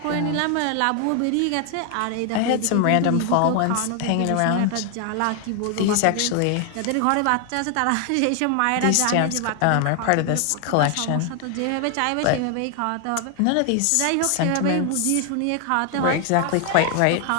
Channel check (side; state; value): both; different; correlation 0.00